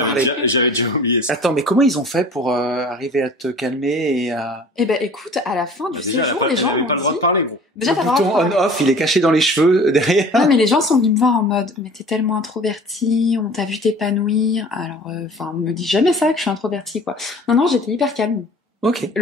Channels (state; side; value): normal; both; correlation 0.46